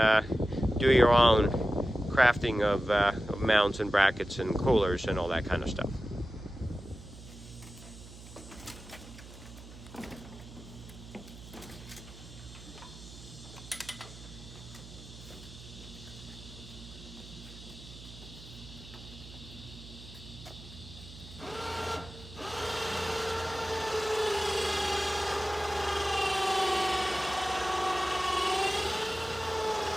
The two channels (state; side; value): noise; right; hum, 16 dB below the sound